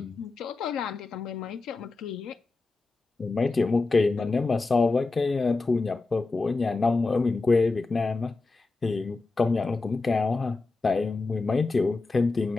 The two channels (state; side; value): quieter; right; 3.6 dB